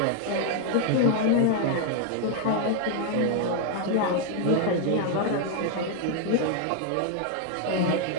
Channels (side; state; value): both; different; correlation 0.00